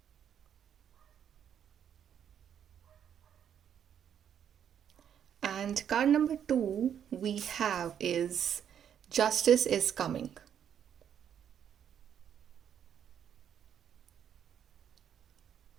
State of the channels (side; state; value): left; quieter; 8.9 dB